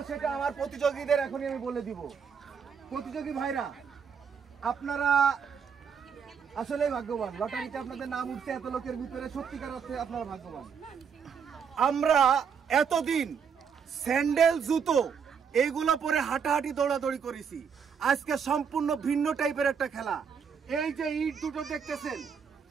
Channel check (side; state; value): left; quieter; 6.7 dB